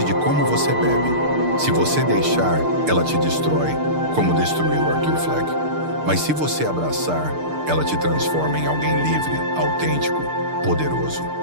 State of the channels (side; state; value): left; late; 6.6 ms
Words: de como você bebe. Se você deixar, ela te destrói, como destruiu Arthur Fleck. Mas se você abraçar, ela te transforma em alguém livre, autêntico, poderoso.